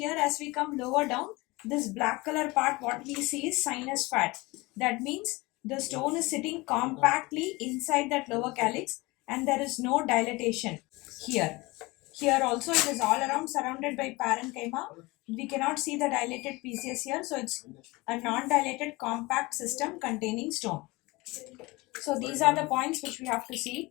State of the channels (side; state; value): right; quieter; 22.9 dB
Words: as we come lower down, this black color part, what we see is sinus fat. That means the stone is sitting compactly inside that lower calyx and there is no dilatation here. Here also it is all around surrounded by parenchyma. We cannot see the dilated PCS here. So it's a non-dilated compact system containing stone. So these are the points which we have to see.